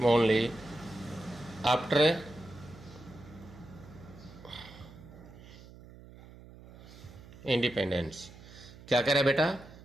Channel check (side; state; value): right; noise; hum, 19 dB below the sound